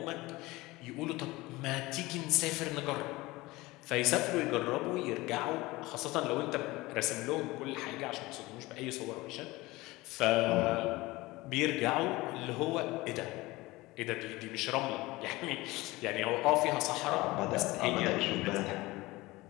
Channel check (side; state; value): right; quieter; 20.6 dB